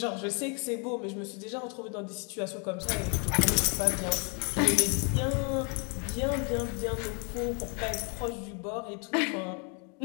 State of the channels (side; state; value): right; quieter; 36.3 dB